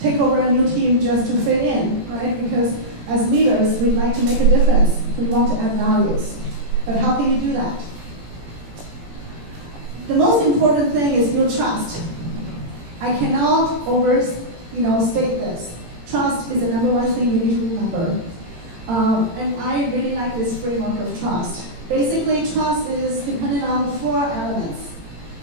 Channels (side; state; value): left; late; 18 ms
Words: take over a new team just to fit in, right? Because as leaders, we'd like to make a difference. We want to add values. But how can you do that? The most important thing is build trust. I cannot state this. Trust is the number one thing you need to remember. And I really like this framework of trust. Basically, trust is dependent on 4 elements: